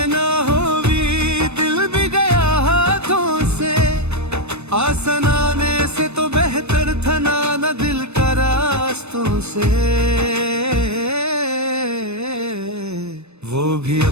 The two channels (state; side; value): late; left; 0.81 ms